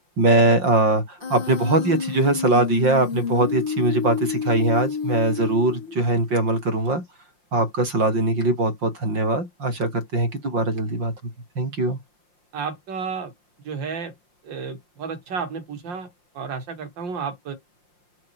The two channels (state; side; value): late; left; 5.7 ms